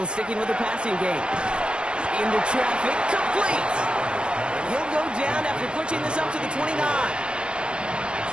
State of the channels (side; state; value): left; late; 0.054 ms